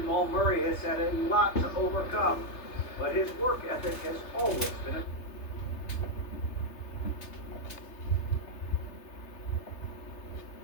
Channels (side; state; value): right; late; 3.3 ms